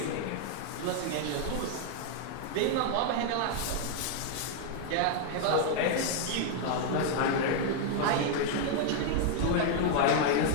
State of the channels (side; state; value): both; different; correlation 0.00